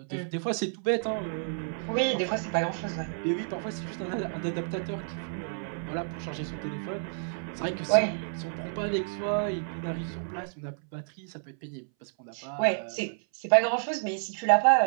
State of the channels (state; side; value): silent; left; 58 dB below the other